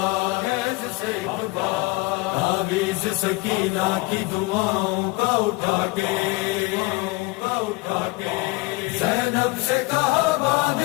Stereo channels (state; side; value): quieter; right; 23.8 dB